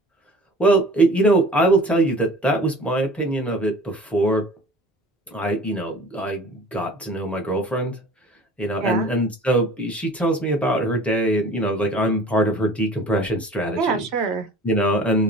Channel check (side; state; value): both; normal; correlation 0.45